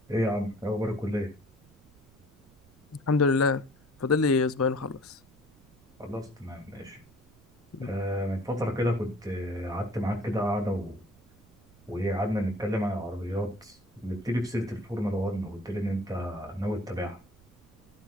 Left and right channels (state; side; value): noise; right; rumble, 28 dB below the sound